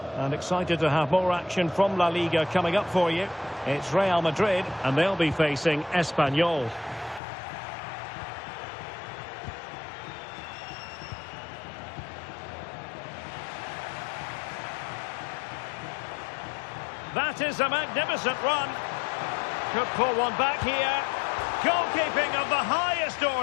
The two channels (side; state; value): right; drops out; at 7.2 s